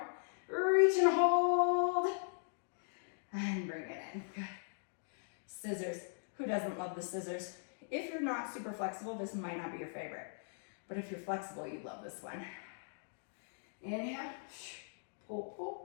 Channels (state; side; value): silent; right; digital silence